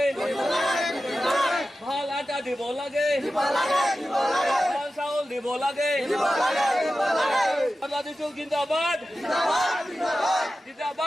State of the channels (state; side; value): normal; both; correlation 0.93